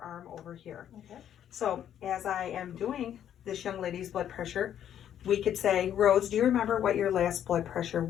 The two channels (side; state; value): right; quieter; 10.1 dB